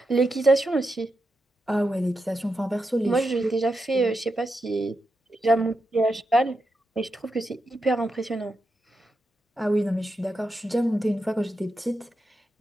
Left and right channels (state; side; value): normal; both; correlation 0.86